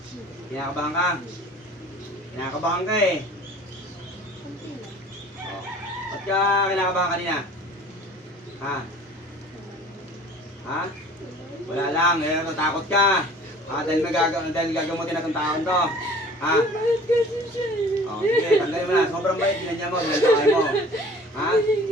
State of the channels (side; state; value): both; normal; correlation 0.48